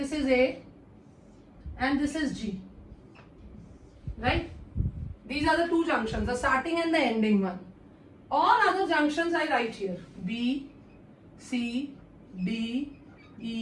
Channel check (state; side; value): identical; both; correlation 1.00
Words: is A and this is G. Right? These are the two junctions, the starting and the ending one. All other junctions I write here. B, C, D,